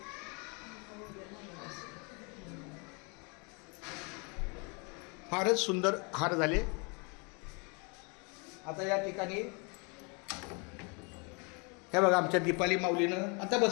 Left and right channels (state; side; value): quieter; right; 32.9 dB